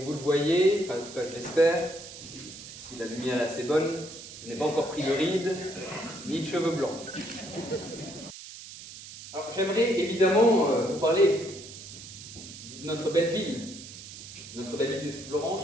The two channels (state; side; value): noise; right; hiss, 14 dB below the sound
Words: vous le voyez, enfin en tout cas je l'espère, si la lumière est assez bonne, je n'ai pas encore pris de rides, ni de cheveux blancs. Alors j'aimerais évidemment vous parler de notre belle ville de